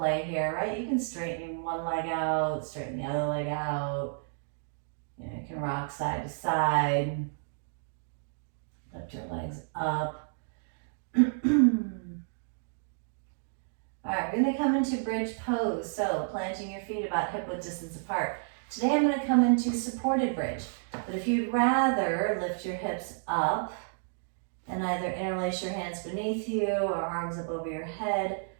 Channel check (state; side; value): silent; left; digital silence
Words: here, right? You can straighten one leg out, straighten the other leg out. You can rock side to side. Lift your legs up. All right, we're gonna come into bridge pose. So planting your feet about hip width distance apart. Today I'm gonna come into supported bridge. But if you'd rather lift your hips up and either interlace your hands beneath you or arms up over your head,